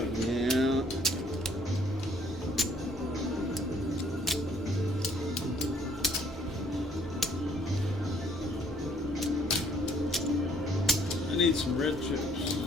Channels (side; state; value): both; normal; correlation 0.63